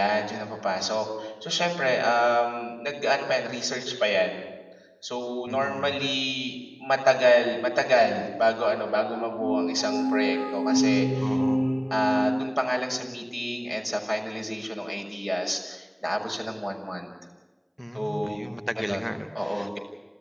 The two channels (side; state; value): both; identical; correlation 1.00